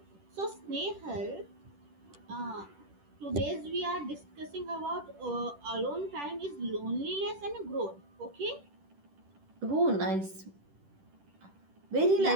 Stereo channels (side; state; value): left; late; 10 ms